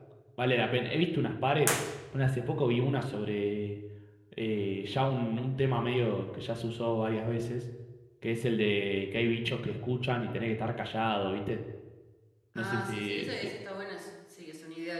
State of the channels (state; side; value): identical; both; correlation 1.00